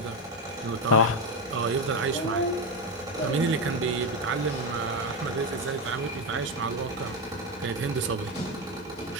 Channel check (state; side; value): normal; both; correlation 0.11